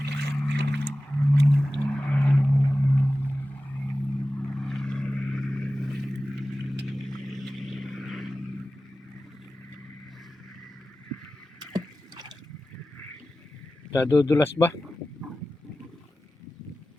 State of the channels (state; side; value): normal; both; correlation 0.95